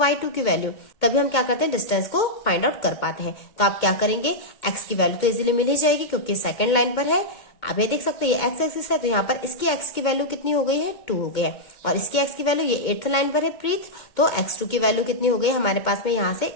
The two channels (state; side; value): late; right; 2.2 ms